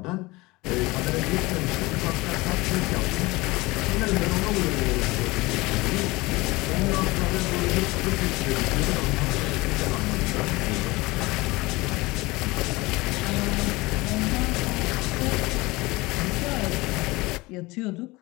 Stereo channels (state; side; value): quieter; right; 22.1 dB